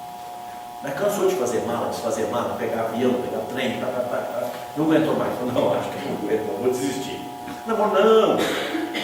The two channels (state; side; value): identical; both; correlation 1.00